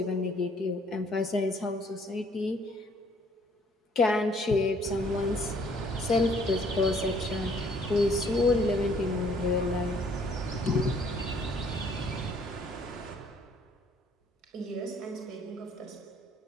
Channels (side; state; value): both; normal; correlation 0.62